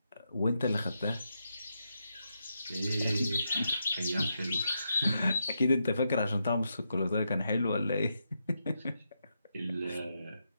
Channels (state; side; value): inverted; both; correlation -0.84